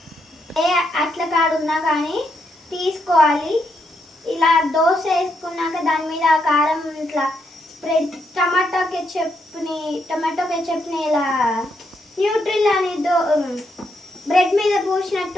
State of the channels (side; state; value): both; normal; correlation 0.78